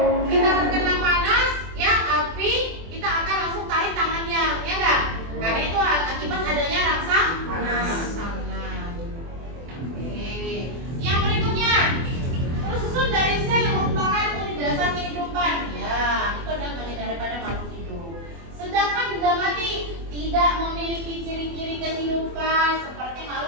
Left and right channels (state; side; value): late; left; 24 ms